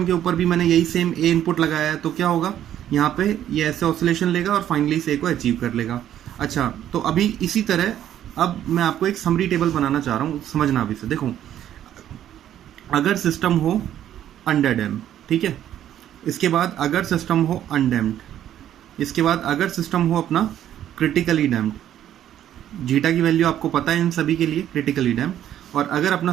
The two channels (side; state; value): left; quieter; 11.2 dB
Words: के ऊपर भी मैंने यही सेम A इनपुट लगाया है तो क्या होगा, यहाँ पे ये ऐसे ऑसिलेशन लेगा और फाइनली इस A को अचीव कर लेगा। अच्छा, तो अभी इसी तरह अब मैं आपको एक समरी टेबल बनाना चाह रहा हूँ, समझना अभी से। देखो अगर सिस्टम हो अंडर डैम, ठीक है, इसके बाद अगर सिस्टम हो अनडैम्ड, इसके बाद अगर सिस्टम हो अपना क्रिटिकली डैम्ड, जीटा की वैल्यू आपको पता है इन सभी के लिए, क्रिटिकली डैम्ड, और अगर अपना